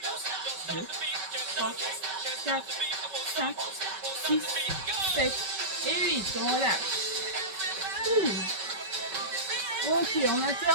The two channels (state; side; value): late; left; 5.2 ms